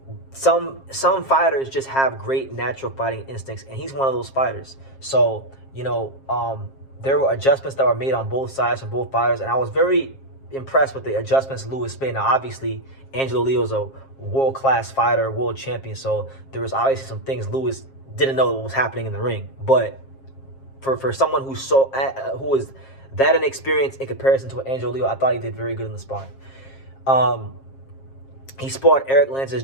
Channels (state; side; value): late; right; 7.4 ms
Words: some fighters just have great natural fighting instincts, and he's one of those fighters. So, you know, there were adjustments that were made on both sides from both fighters, and I was very impressed with the adjustments Luis made. Now, obviously, Angelo Leo's a world-class fighter, world champion, so there was obviously some things Luis didn't know what was happening in the ring. But for someone who was that inexperienced in comparison to Angelo Leo, I thought he did very good in the sparring. He sparred Eric Lances